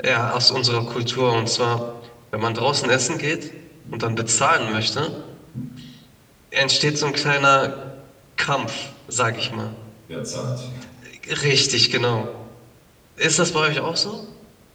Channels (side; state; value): both; identical; correlation 1.00